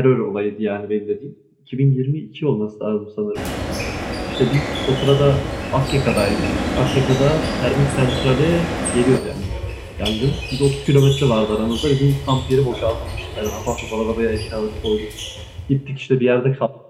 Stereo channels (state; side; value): identical; both; correlation 1.00